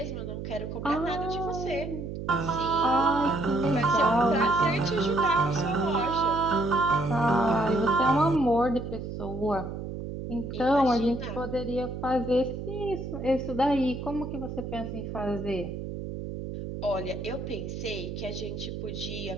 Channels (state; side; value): noise; right; hum, 7 dB below the sound